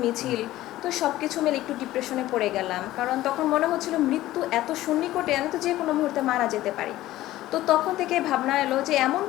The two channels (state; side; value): quieter; right; 15.5 dB